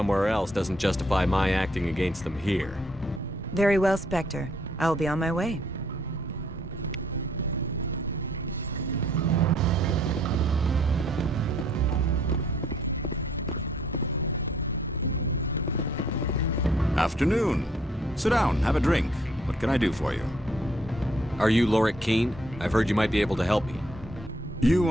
else doesn't justify my acting against them here. Very well, Spectre. I will be on my way. Afternoon. Sit down, have a drink. What can I do for you? Are you Lorik Keene? I've heard you might be able to help me. You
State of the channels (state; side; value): normal; both; correlation 0.65